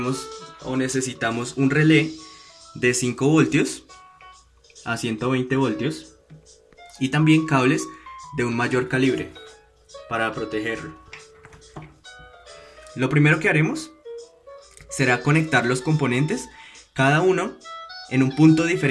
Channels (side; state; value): both; identical; correlation 1.00